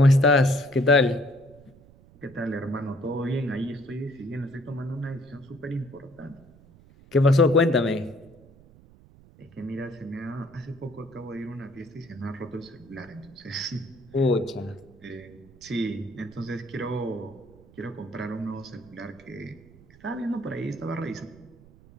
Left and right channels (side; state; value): right; noise; rumble, 24 dB below the sound